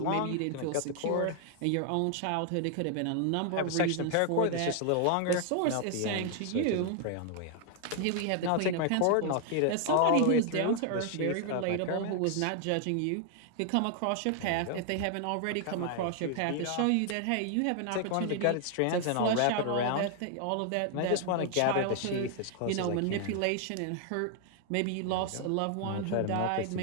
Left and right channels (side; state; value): both; different; correlation 0.00